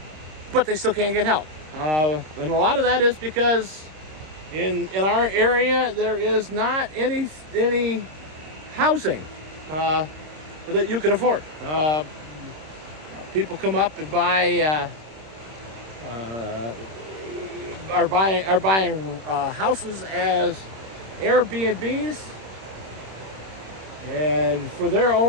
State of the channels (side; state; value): left; late; 26 ms